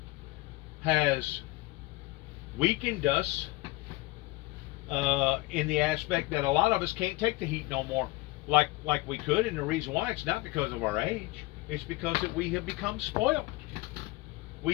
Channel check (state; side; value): quieter; right; 20.8 dB